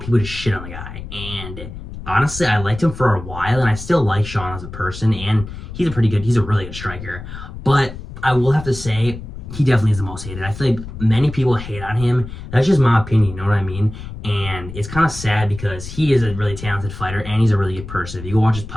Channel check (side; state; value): left; noise; rumble, 11 dB below the sound